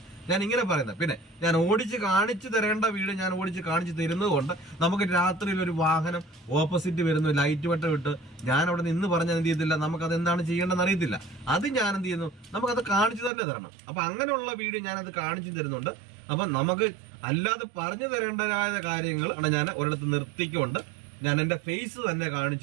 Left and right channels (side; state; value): left; drops out; at 13.3 s